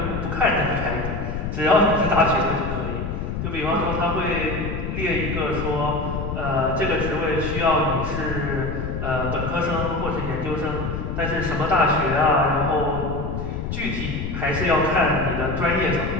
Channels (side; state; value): left; noise; rumble, 4 dB below the sound